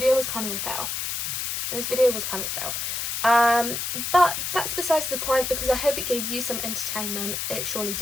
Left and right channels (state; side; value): noise; left; hiss, 2 dB below the sound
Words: was kind of a fail. But that's besides the point because I hope it gave you some entertainment. It surely